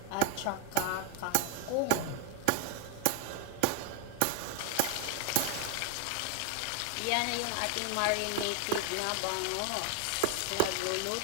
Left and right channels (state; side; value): different; both; correlation 0.01